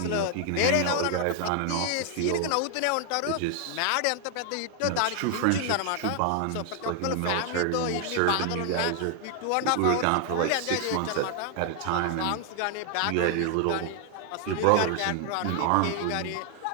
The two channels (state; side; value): different; both; correlation 0.00